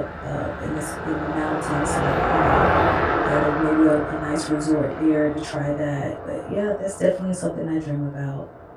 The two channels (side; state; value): both; identical; correlation 1.00